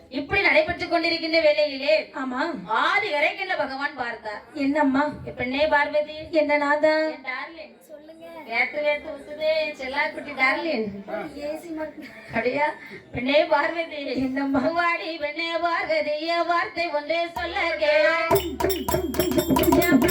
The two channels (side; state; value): both; identical; correlation 1.00